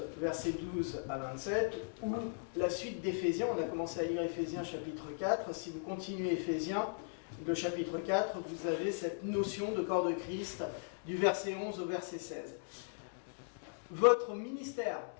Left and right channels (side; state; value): right; silent; digital silence